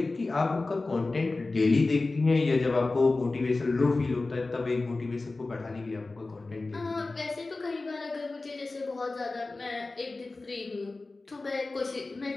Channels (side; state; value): right; quieter; 3.4 dB